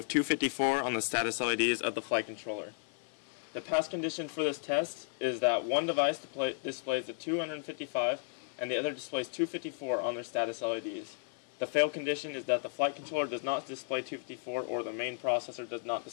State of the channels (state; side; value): silent; right; 55 dB below the other